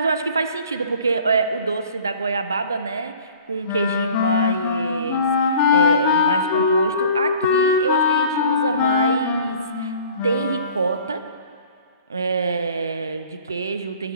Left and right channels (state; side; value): inverted; both; correlation -0.49